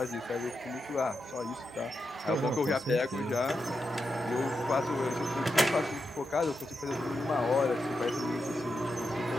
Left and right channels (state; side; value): normal; both; correlation 0.86